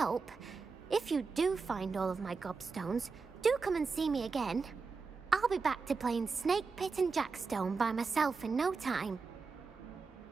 If you do find all of my gobstones, do come and see me again. I'll be back to playing Snake Pit and Jackstone by myself in no time.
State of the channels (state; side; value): quieter; left; 4.7 dB